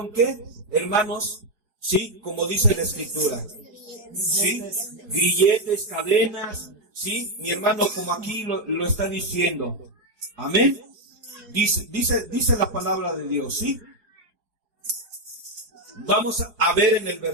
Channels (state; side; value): late; left; 4.8 ms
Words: ¿qué? Hermanos, ¿sí?, como dice la Escritura, ¿sí?, grilletes, cadenas, ¿sí?, mi hermano, como aquí lo está diciendo. Amén. Dice la palabra de Dios, ¿sí? Vamos a ver en el